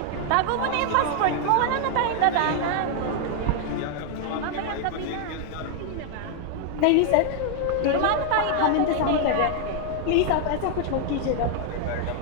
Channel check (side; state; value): both; different; correlation 0.00